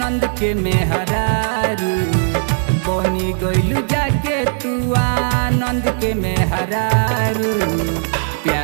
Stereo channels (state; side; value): silent; left; digital silence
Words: के मेहरारू बनी गैलू जाके तू आनंद के मेहरारू